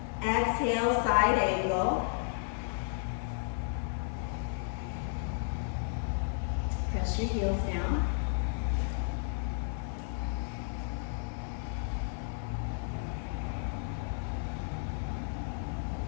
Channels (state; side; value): silent; right; digital silence